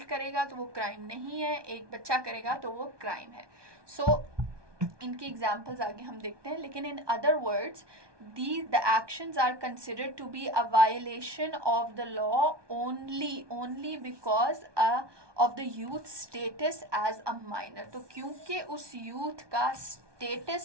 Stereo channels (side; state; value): left; late; 1.2 ms